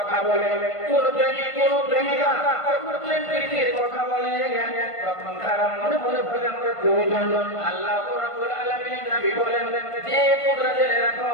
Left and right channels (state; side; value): late; right; 1.5 ms